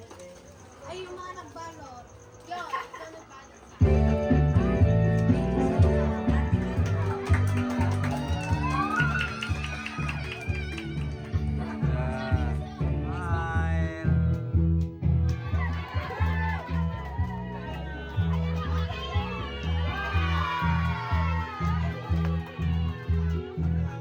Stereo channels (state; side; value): identical; both; correlation 1.00